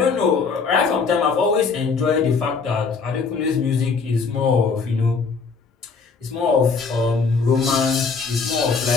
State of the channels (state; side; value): quieter; right; 5.0 dB